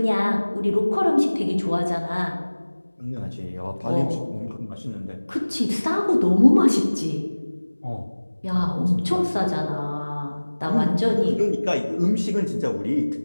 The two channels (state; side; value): inverted; both; correlation -1.00